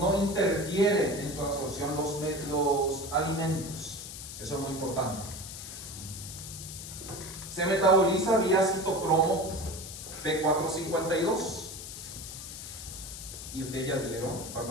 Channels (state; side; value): noise; left; hiss, 10 dB below the sound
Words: interfieren en su absorción los alimentos. Eso es muy importante. Se metaboliza vía citocromo P452. Y ustedes ya dieron